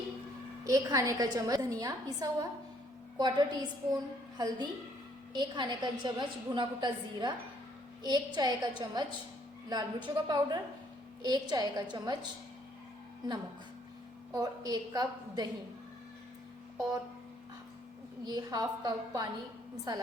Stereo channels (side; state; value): both; normal; correlation 0.65